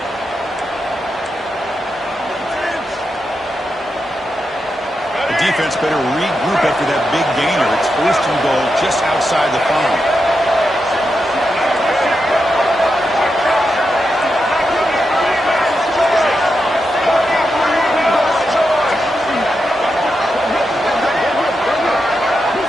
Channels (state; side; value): normal; both; correlation 0.86